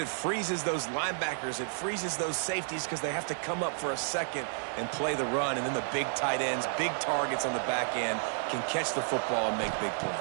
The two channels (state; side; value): silent; left; digital silence